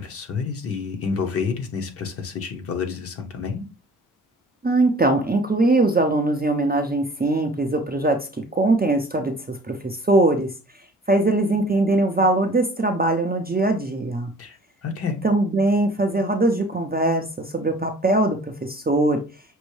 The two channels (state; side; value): normal; both; correlation 0.50